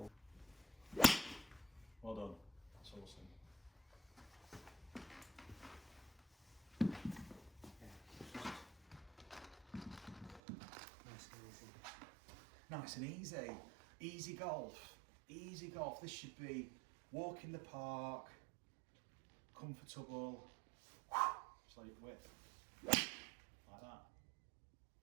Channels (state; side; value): drops out; left; at 10.4 s